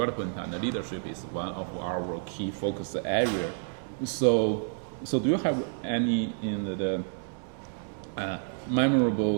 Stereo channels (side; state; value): left; silent; 58 dB below the other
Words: and the leadership is one of our key focus area. So do you have any